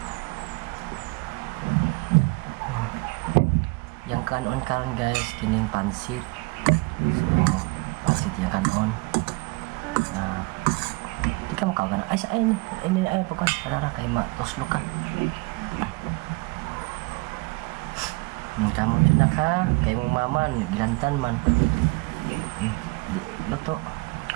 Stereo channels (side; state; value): left; quieter; 26.7 dB